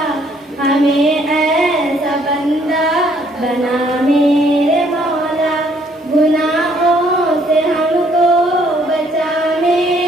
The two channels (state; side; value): normal; both; correlation 0.65